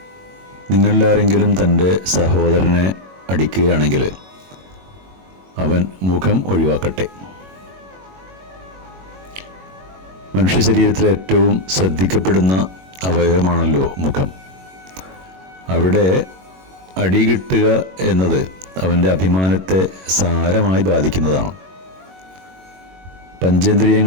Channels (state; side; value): late; left; 21 ms